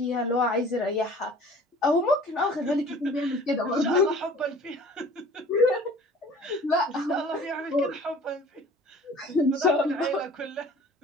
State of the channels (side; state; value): both; normal; correlation 0.47